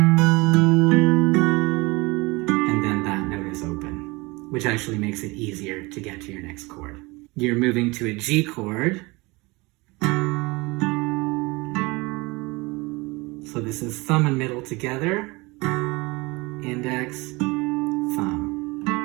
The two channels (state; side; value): quieter; left; 24.4 dB